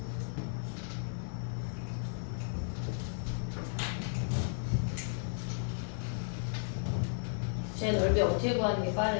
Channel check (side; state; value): right; silent; digital silence